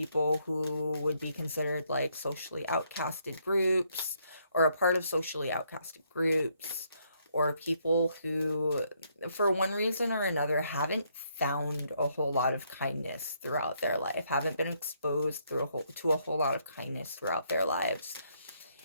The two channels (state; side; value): inverted; both; correlation -0.72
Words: who would be considered like socially outcasted groups, or a part of socially outcasted groups, or people who, for one reason or another, haven't found a whole lot of kindness throughout their life, haven't been exposed to a whole lot of kindness throughout their lives.